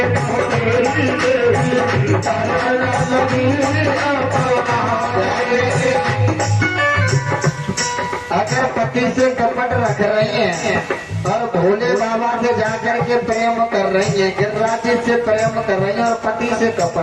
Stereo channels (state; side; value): identical; both; correlation 1.00